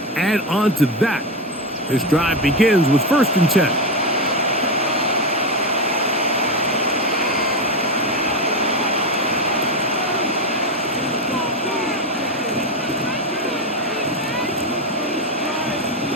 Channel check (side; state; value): both; normal; correlation 0.13